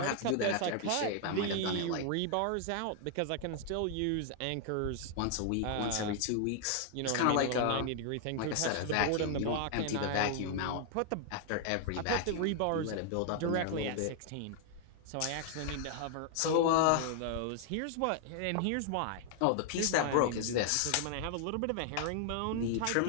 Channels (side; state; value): both; different; correlation 0.00